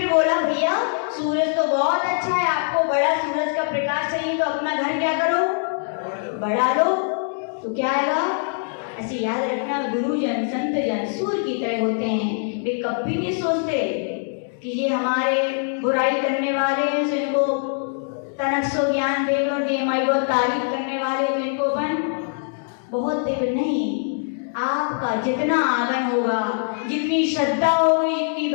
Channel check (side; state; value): right; silent; 63 dB below the other